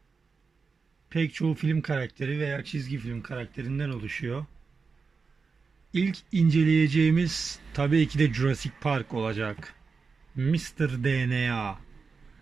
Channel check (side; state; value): left; quieter; 4.8 dB